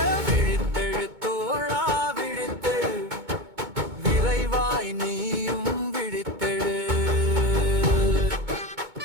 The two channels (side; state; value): left; late; 2.2 ms